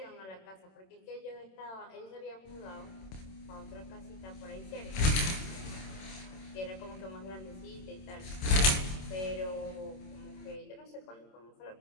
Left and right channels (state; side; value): late; right; 26 ms